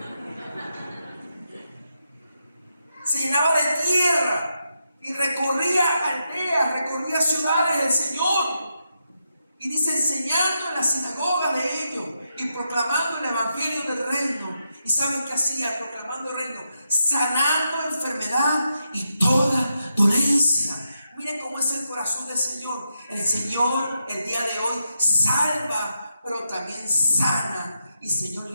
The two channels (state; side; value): inverted; both; correlation -0.84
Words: se llenaba de tierra y recorría aldeas, recorría ciudades del Señor. Y dice, enseñando en las sinagogas de ellos y proclamando el evangelio del reino. ¿Y saben qué hacía? Proclamando el reino, sanando enfermedad y toda dolencia. Miren cómo es el corazón del Señor. El Señor el día de hoy salva, pero también sana. Y el Señor